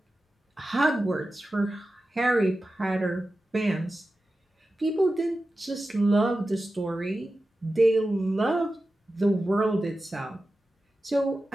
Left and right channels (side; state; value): both; normal; correlation 0.93